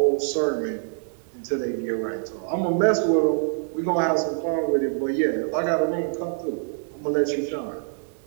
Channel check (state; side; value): silent; left; 62 dB below the other